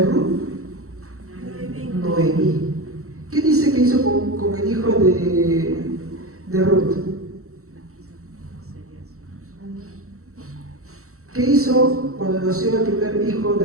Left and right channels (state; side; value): late; left; 0.64 ms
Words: Ruth? Noemí. ¿Qué dice que hizo con el hijo de Ruth? ¿Qué hizo cuando nació el primer hijo